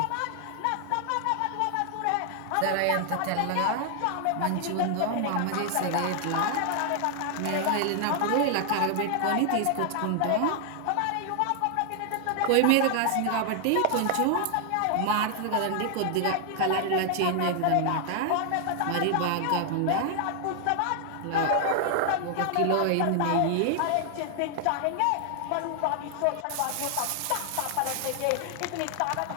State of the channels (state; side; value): different; both; correlation 0.00